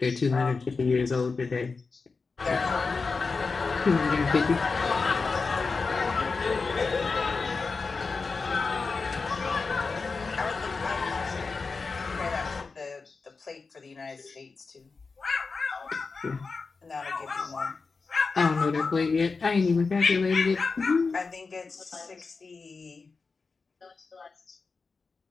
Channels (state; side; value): quieter; right; 4.4 dB